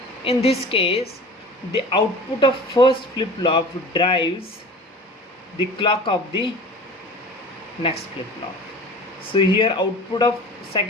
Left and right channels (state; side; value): normal; both; correlation 0.40